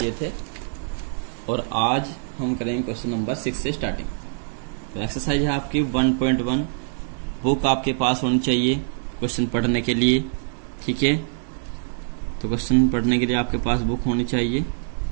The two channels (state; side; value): silent; left; digital silence